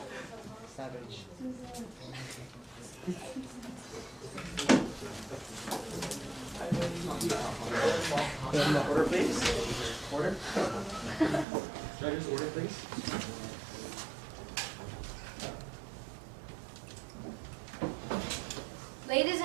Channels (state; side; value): drops out; left; at 11.5 s